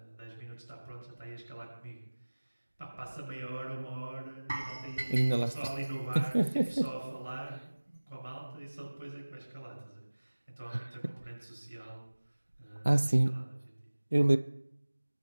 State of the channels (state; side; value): inverted; both; correlation -1.00